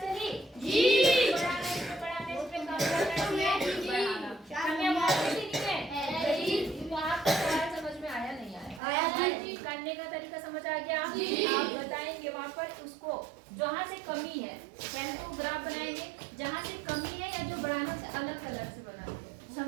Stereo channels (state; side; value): drops out; left; at 8.8 s